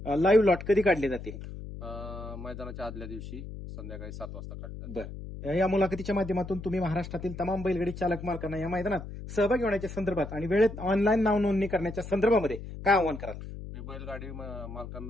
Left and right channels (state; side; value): noise; left; hum, 10 dB below the sound